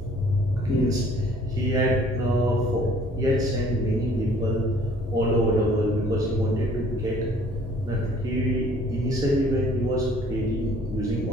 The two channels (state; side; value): normal; both; correlation 0.56